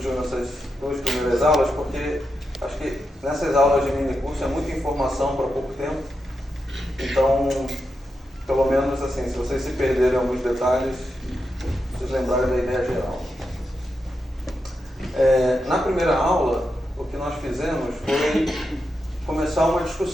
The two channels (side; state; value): both; normal; correlation 0.87